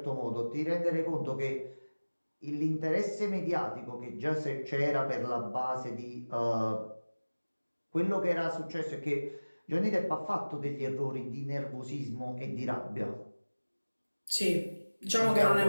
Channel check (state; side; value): inverted; both; correlation -1.00